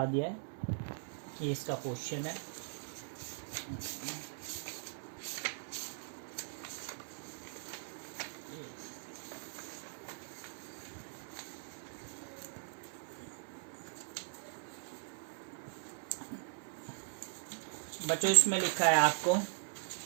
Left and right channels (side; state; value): left; silent; 51 dB below the other